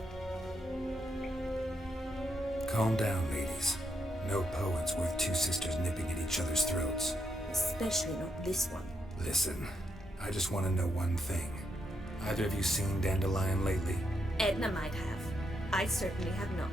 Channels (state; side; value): normal; both; correlation 0.80